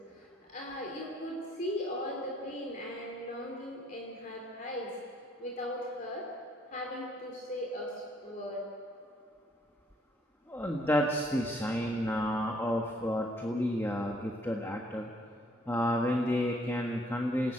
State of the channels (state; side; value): normal; both; correlation 0.66